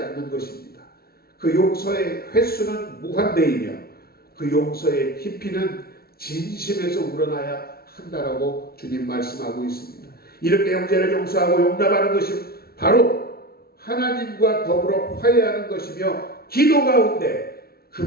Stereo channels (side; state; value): right; late; 0.44 ms